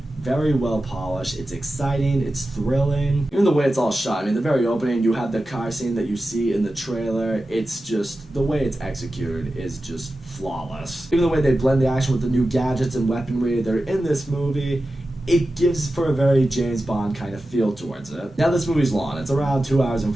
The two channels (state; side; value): normal; both; correlation 0.93